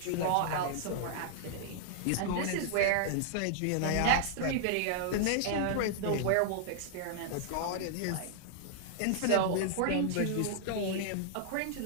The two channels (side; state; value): both; different; correlation -0.01